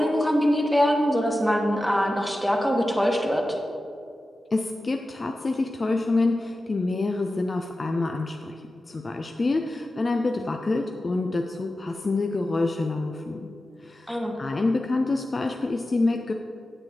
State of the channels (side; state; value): both; normal; correlation 0.93